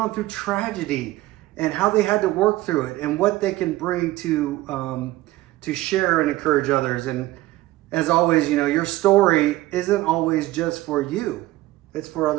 through tragedy and how they had to work through it and what they can bring to share and encourage others. And as always, you know, your story isn't always just for you; it's for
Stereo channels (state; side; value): quieter; left; 17.3 dB